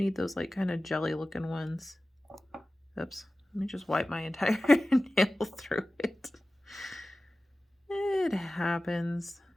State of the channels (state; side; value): normal; both; correlation 0.96